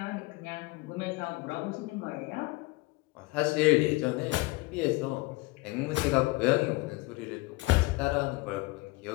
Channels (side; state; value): right; quieter; 22.6 dB